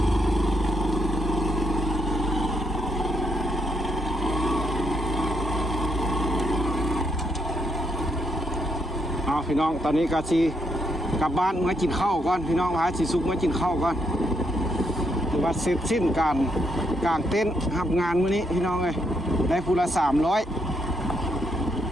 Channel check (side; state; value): both; normal; correlation 0.77